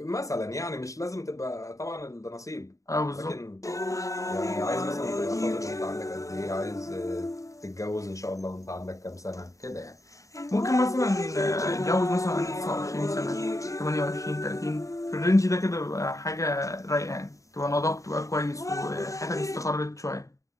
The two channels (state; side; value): late; right; 0.16 ms